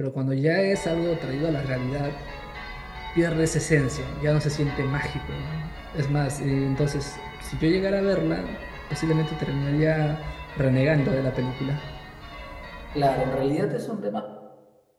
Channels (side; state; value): both; identical; correlation 1.00